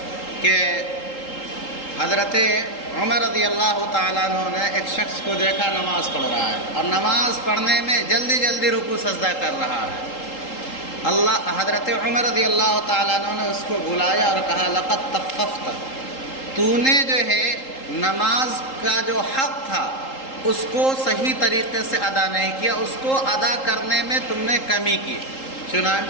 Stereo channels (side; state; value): right; late; 3.8 ms